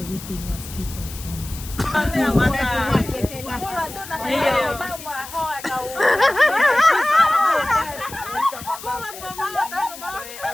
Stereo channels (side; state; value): left; noise; hiss, 14 dB below the sound